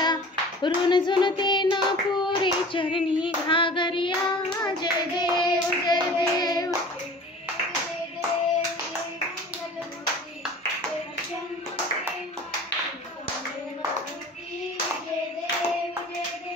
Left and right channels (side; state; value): both; normal; correlation 0.42